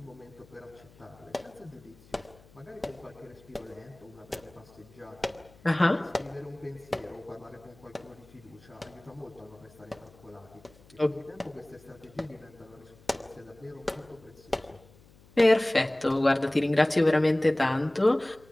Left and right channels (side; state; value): left; noise; hum, 26 dB below the sound